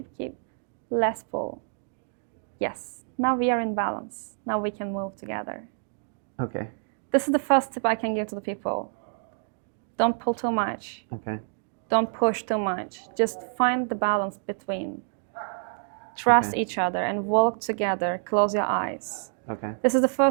Less pull. Yes. Now we are in balance. Now we can move together. Okay. This is the first tip I can give to the people. Don't pull too much. Okay. Don't push too much. Just find the balance between. Trust each other and walk together. Close your eyes. Okay. This is the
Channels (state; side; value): silent; left; digital silence